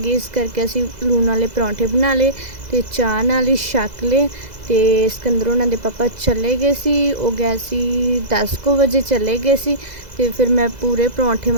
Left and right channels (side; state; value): left; late; 2.0 ms